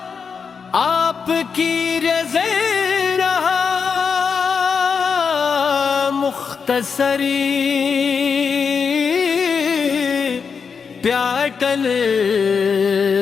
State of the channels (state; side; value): quieter; right; 5.9 dB